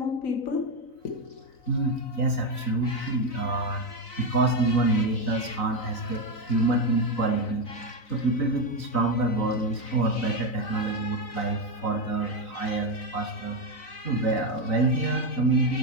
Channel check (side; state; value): right; late; 3.9 ms